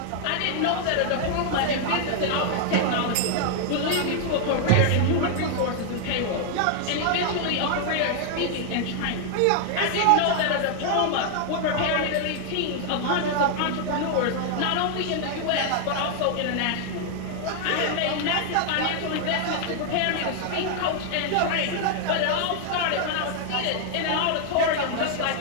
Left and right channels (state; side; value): different; both; correlation 0.00